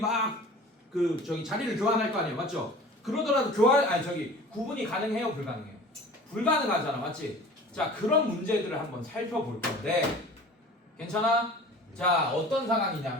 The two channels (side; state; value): both; normal; correlation 0.42